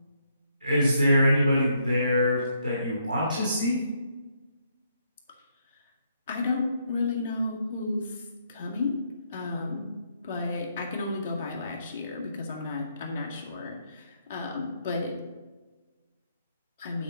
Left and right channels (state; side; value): inverted; both; correlation -0.74